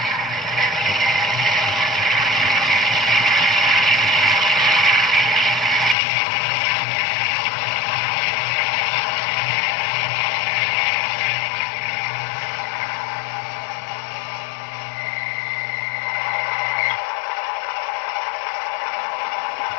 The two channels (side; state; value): right; drops out; at 6.0 s